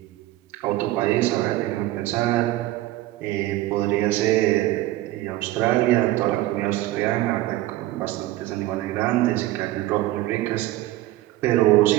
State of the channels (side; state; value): left; quieter; 16.2 dB